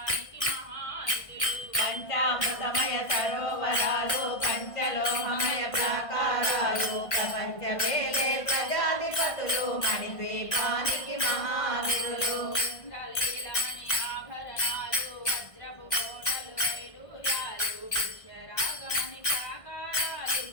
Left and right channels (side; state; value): right; late; 1.5 ms